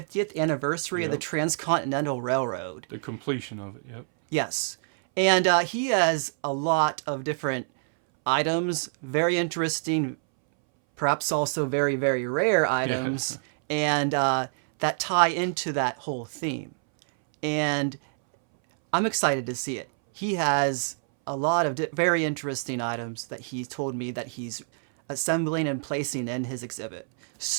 anniversary of the Transcontinental Railroad. The completion of it. Yep. Yes, and he has a lot of different items, very interesting, perhaps also very rare items, and that tie into that whole theme. And I'm excited to see it. He has a lot of very interesting items that he told me that he's assembling and placing in his exhibit.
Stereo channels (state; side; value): silent; left; 60 dB below the other